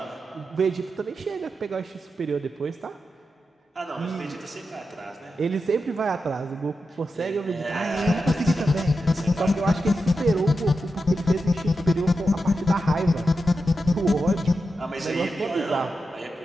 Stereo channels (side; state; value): both; normal; correlation 0.89